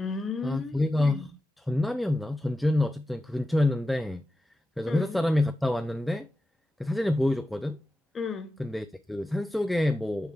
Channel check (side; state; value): both; normal; correlation 0.92